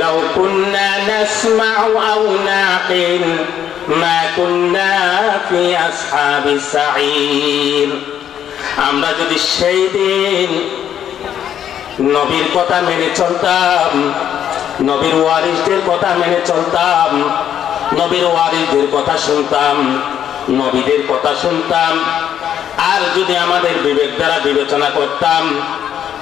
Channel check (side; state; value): right; quieter; 9.7 dB